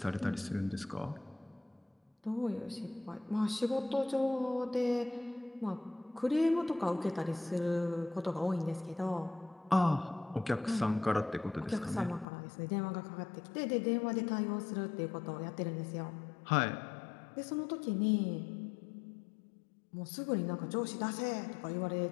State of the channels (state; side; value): drops out; right; at 12.2 s